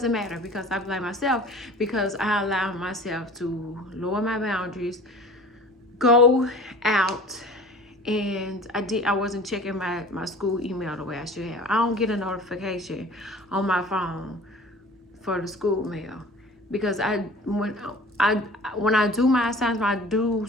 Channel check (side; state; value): both; normal; correlation 0.43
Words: matter because I blame myself, because I allow myself to lower my boundaries, go out, and I wasn't checking my school email the way I should have. I don't get a notification on my phone for the school mail, because when I do my assignments, I do